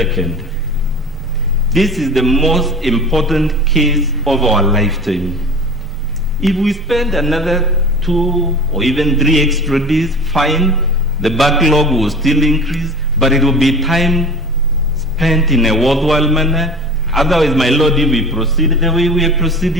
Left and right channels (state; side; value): normal; both; correlation 0.37